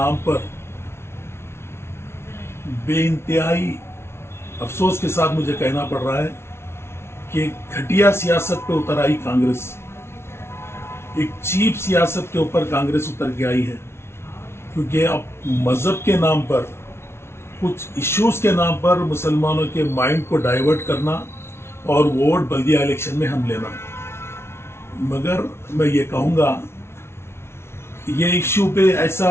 पर बेइंतहाई अफसोस के साथ मुझे कहना पड़ रहा है कि घटिया सियासत पे उतर आई कांग्रेस। एक चीप सियासत के ऊपर कांग्रेस उतर के आई है, क्योंकि अब मजहब के नाम पर, कुछ इश्यूज के नाम पर मुसलमानों के माइंड को डाइवर्ट करना और वोट बल्दिया इलेक्शन में हम लेना। मगर मैं ये कहूँगा, ये इश्यू पे ऐसा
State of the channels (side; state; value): right; late; 0.12 ms